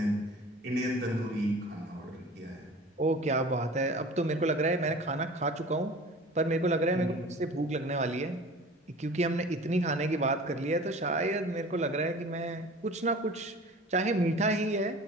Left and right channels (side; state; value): both; normal; correlation 0.41